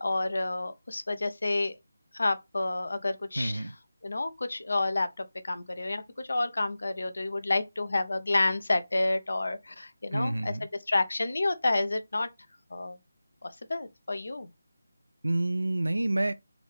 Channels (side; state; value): both; inverted; correlation -0.97